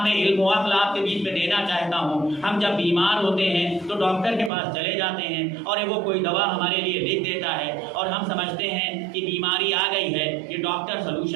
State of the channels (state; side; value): drops out; left; at 4.5 s